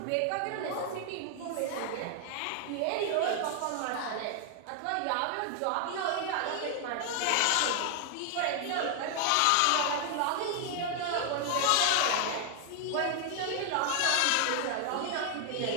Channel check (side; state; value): both; different; correlation 0.00